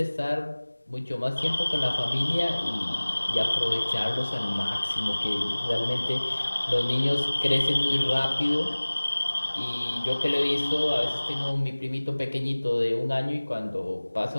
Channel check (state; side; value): inverted; both; correlation -1.00